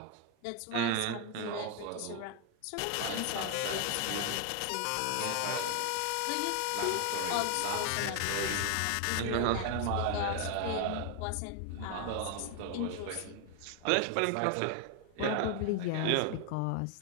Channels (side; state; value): both; different; correlation 0.01